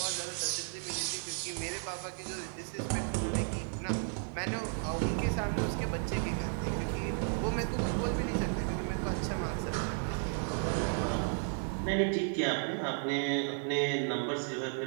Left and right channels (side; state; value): left; silent; 55 dB below the other